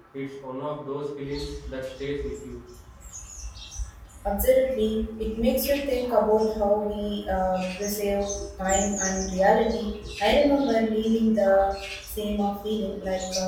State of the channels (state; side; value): identical; both; correlation 1.00